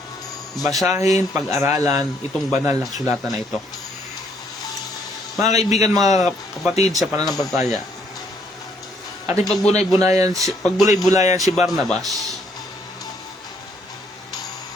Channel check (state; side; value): normal; both; correlation 0.68